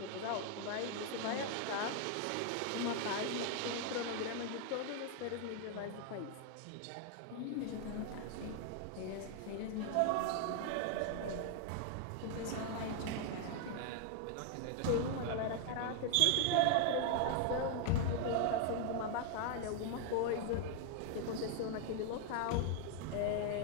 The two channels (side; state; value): both; different; correlation 0.00